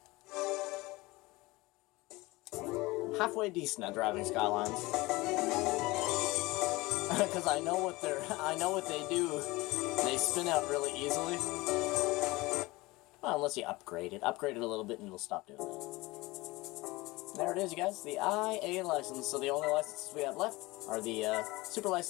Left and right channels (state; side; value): quieter; right; 21.6 dB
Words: Halfway decent at driving Skylines, because I know what they do. They spin out really easily. Well, unless you upgrade it a little bit, and it'll stop doing that. There it is, you guys. The IA license. So the only licenses we have left are the Super